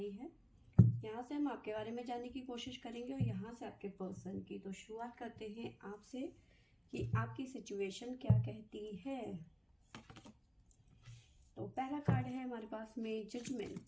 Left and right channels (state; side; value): identical; both; correlation 1.00